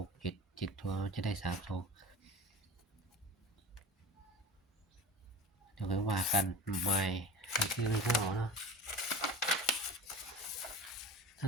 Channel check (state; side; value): normal; both; correlation 0.35